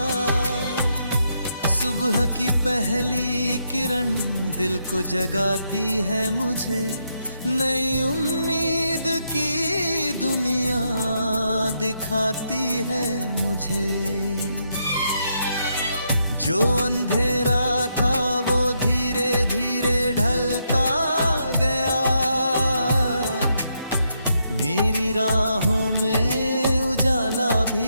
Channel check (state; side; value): inverted; both; correlation -0.79